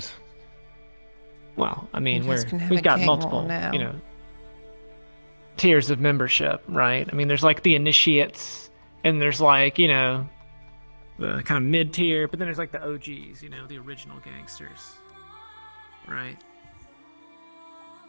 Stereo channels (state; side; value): inverted; both; correlation -1.00